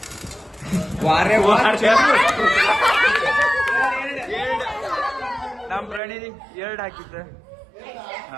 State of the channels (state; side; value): drops out; left; at 6.0 s